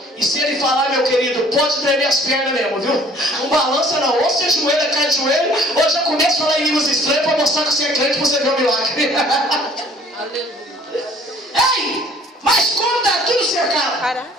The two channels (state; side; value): normal; both; correlation 0.55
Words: E se ele falar, meu querido, pode tremer as pernas mesmo, viu? Não balança não, ou você ajoelha, cai de joelho, ou já começa a falar em línguas estranhas para mostrar que você é crente para você ver o milagre. Aleluia. Ei, mas como está tudo cercado,